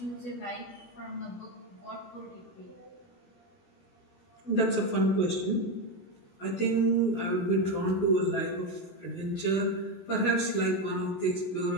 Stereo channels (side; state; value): right; late; 17 ms